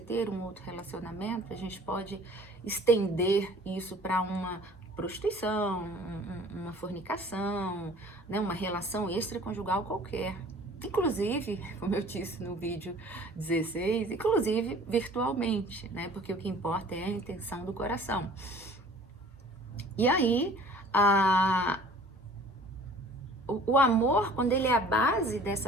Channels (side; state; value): both; normal; correlation 0.49